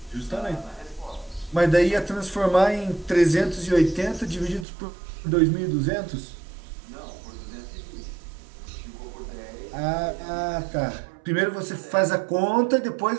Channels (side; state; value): left; drops out; at 4.7 s